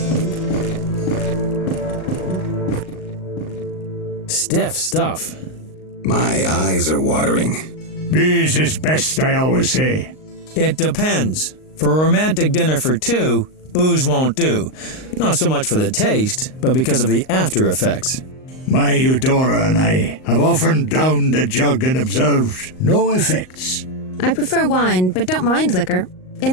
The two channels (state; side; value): late; right; 38 ms